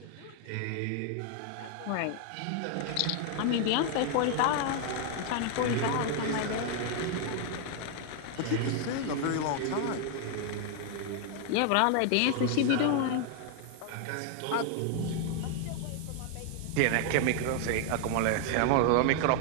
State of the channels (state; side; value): different; both; correlation 0.00